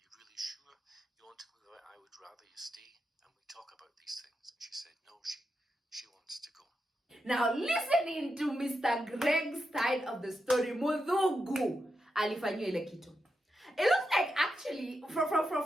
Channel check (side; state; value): both; normal; correlation 0.86